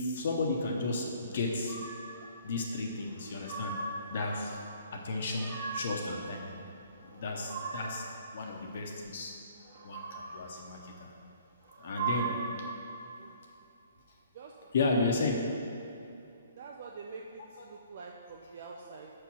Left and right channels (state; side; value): inverted; both; correlation -0.57